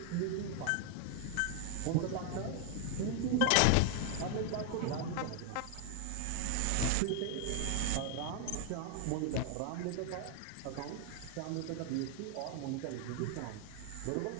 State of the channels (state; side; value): different; both; correlation 0.00